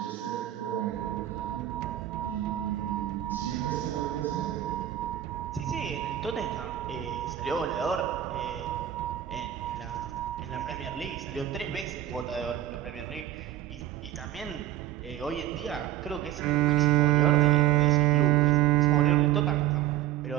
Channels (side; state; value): left; quieter; 12.8 dB